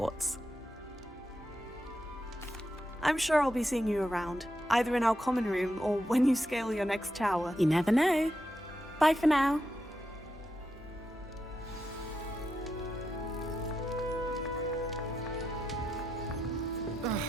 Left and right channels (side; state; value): both; normal; correlation 0.85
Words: I'm sure I'll be seeing you around, either in our common room or when you scale your next tower. You never know. Bye for now.